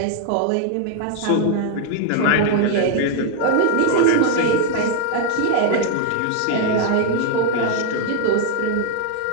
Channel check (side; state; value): both; different; correlation 0.00